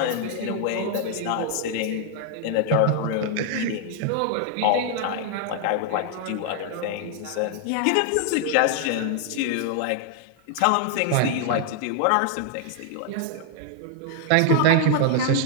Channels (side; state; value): both; different; correlation 0.00